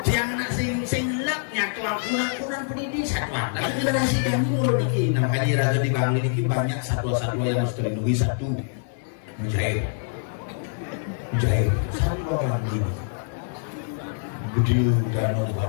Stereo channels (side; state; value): right; silent; 62 dB below the other